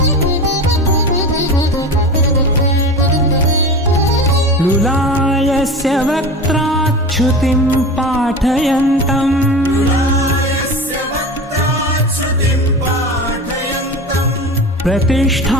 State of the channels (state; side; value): normal; both; correlation 0.30